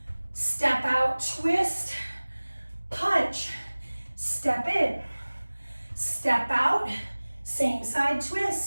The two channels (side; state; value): both; inverted; correlation -1.00